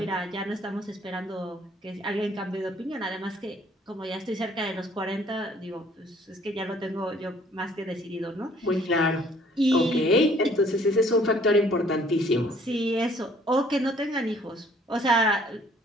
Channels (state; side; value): normal; both; correlation 0.59